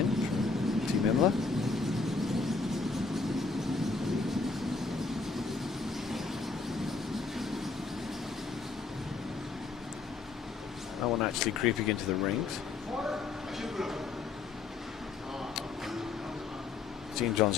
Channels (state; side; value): quieter; right; 4.3 dB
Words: from Team Imlah. No one actually creeping into the rings. Team Johns